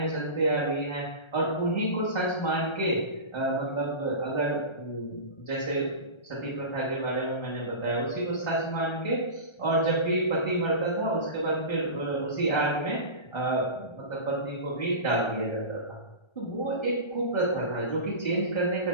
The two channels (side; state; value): right; late; 1.3 ms